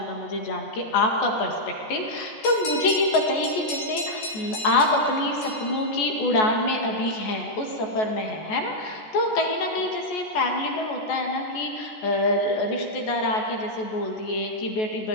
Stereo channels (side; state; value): right; late; 14 ms